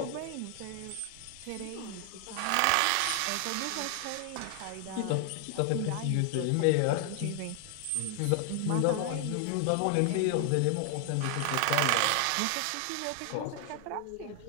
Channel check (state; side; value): different; both; correlation 0.00